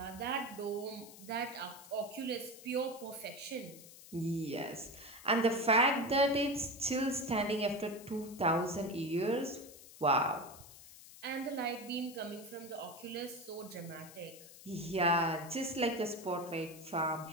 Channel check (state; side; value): noise; left; hiss, 18 dB below the sound